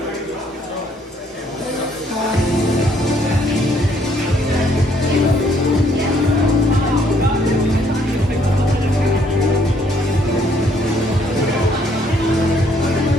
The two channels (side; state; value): both; normal; correlation 0.67